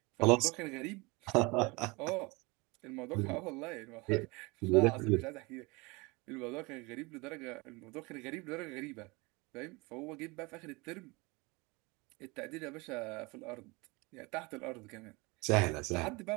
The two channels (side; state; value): left; quieter; 25.8 dB